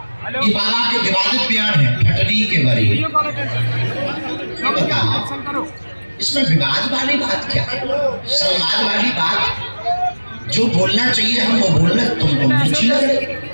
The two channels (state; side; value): inverted; both; correlation -1.00